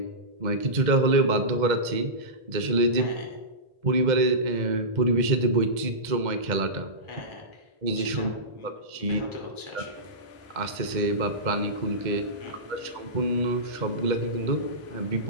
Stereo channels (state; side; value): late; left; 2.0 ms